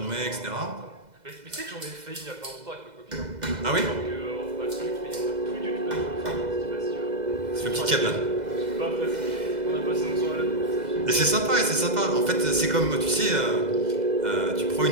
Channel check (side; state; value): left; late; 2.0 ms